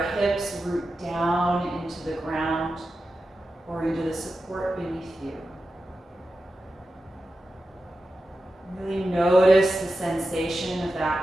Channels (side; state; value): both; normal; correlation 0.91